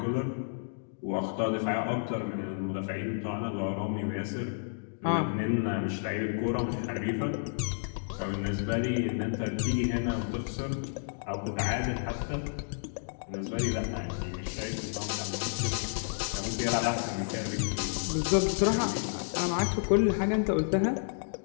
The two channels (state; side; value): silent; right; digital silence